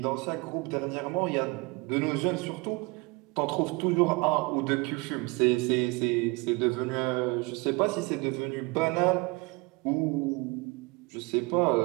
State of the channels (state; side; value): quieter; left; 26.9 dB